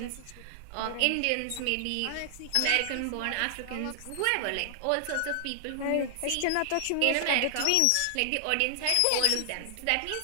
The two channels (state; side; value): different; both; correlation 0.00